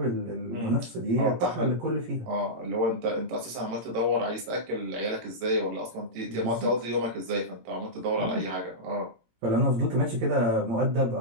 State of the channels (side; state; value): left; late; 17 ms